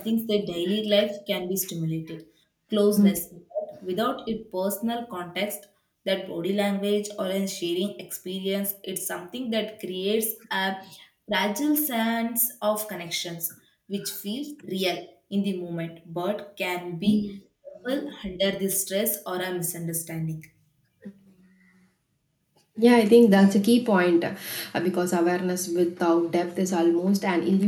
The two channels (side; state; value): both; identical; correlation 1.00